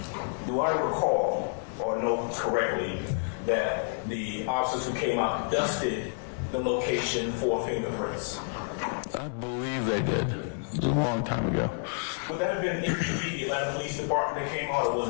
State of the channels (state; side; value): silent; right; 58 dB below the other